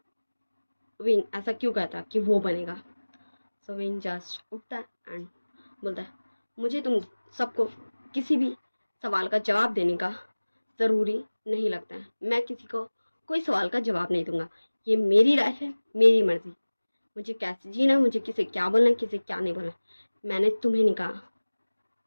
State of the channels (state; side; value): inverted; both; correlation -1.00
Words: विंग ऐसा क्यों कहता कि वो बनेगा। सो विंग जस्ट उठता है एंड बोलता है, मुझे तुम सबको किसी भी सवाल का जवाब देने का ज़रूरी नहीं लगता है, मैं किसी को कोई सवाल का जवाब नहीं दूंगा, ये मेरी लाइफ है, मेरी मर्जी, मुझे कैसे जीना, मुझे किसे क्या बोलना है किसे क्या नहीं बोलना, मैंने तुम्हें नहीं कहा।